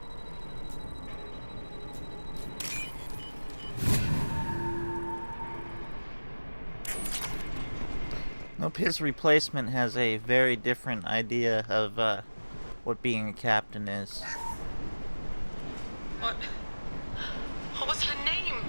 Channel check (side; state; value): both; inverted; correlation -1.00